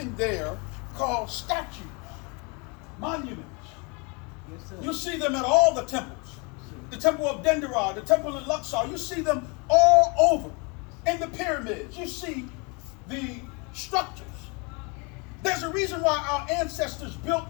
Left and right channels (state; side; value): quieter; right; 30.9 dB